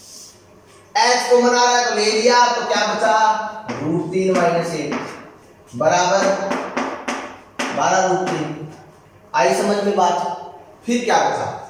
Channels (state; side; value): identical; both; correlation 1.00